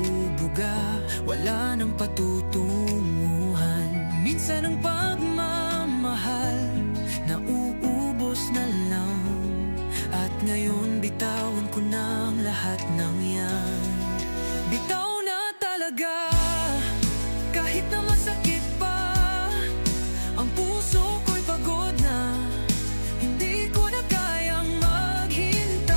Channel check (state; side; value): inverted; both; correlation -1.00